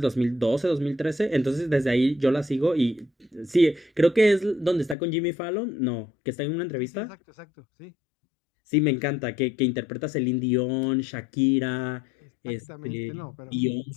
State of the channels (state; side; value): drops out; right; at 5.0 s